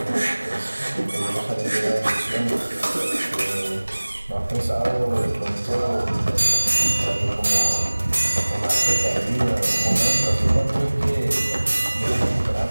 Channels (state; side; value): inverted; both; correlation -1.00